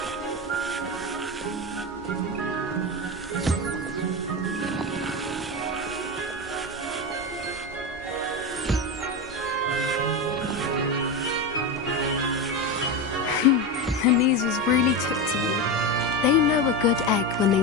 The Neasels really took to you. They know a good egg when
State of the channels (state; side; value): normal; both; correlation 0.17